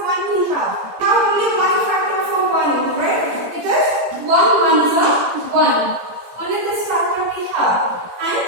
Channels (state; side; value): late; left; 17 ms